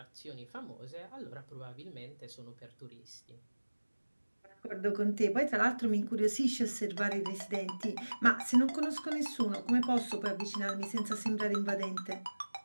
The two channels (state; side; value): inverted; both; correlation -1.00